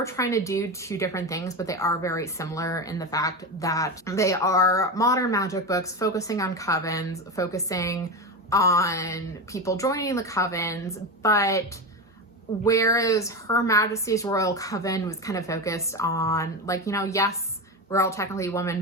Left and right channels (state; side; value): normal; both; correlation 0.19